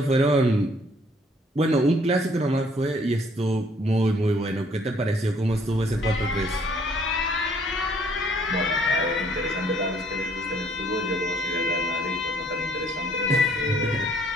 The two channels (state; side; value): normal; both; correlation 0.62